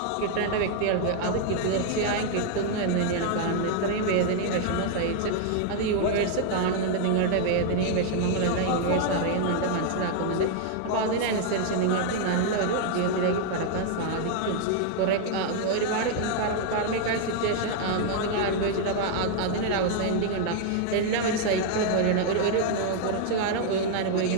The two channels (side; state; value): both; different; correlation 0.00